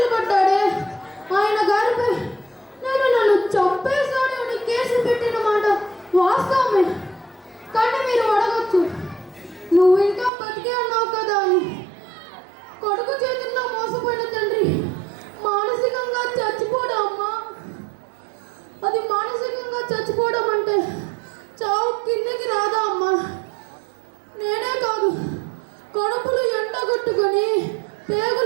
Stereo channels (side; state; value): left; drops out; at 10.3 s